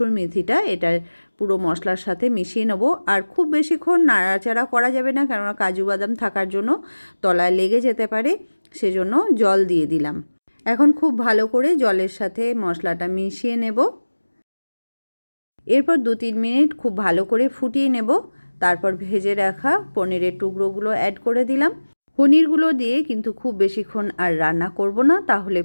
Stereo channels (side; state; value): both; inverted; correlation -1.00